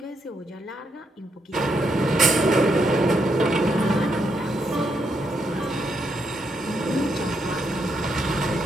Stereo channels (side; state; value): both; normal; correlation 0.79